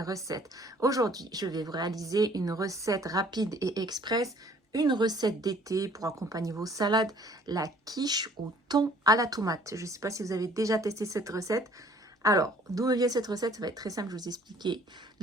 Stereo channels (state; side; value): normal; both; correlation 0.56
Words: recettes. Aujourd'hui, je vais vous réaliser une recette rapide et express, une recette d'été pour accompagner vos salades, la quiche au thon à la tomate. Je ne sais pas si vous avez déjà testé cette recette. Alors, d'où vient cette recette? Ça va être très simple, je vais vous expliquer